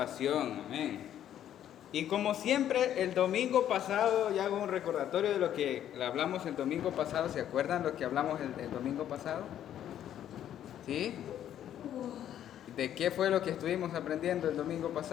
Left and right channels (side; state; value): right; quieter; 10.8 dB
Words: Amén. Y como siempre, el domingo pasado, ya hago un recordatorio de lo que hablamos el domingo pasado. ¿Se acuerdan lo que hablamos el domingo pasado? ¿Sí? ¿De qué fue lo que estuvimos aprendiendo el domingo